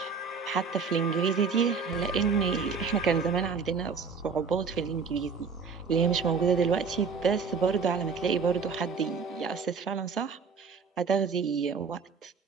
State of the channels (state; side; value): quieter; left; 5.4 dB